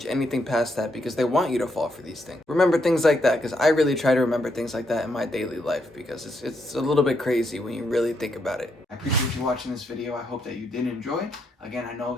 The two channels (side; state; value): both; normal; correlation 0.78